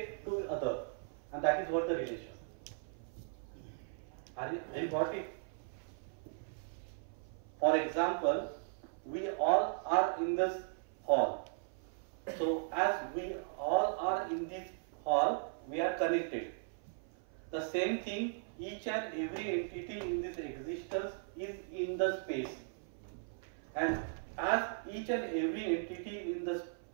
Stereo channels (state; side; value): silent; left; 53 dB below the other